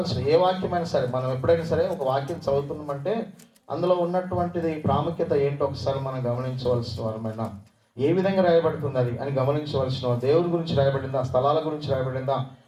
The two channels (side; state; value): both; identical; correlation 1.00